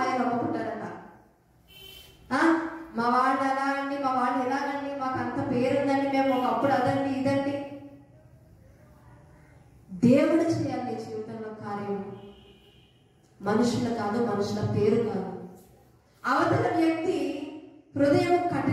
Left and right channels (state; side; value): identical; both; correlation 1.00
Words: అమ్ముకుంటారట. మా వాళ్ళు అలా అండి, మా వాళ్ళు ఎలాగండి, మాకు అంత పేరుందండి, మేము ఒకప్పుడు అదండి ఇదండి. దేవుడు చేయాలి నీ జీవితంలో కార్యం, మనుషుల కాదు, మనుషుల పేరు కాదు. అవతల వ్యక్తి హృదయం